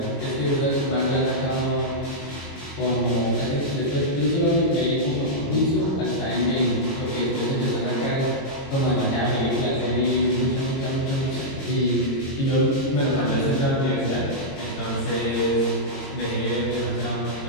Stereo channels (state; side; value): late; right; 22 ms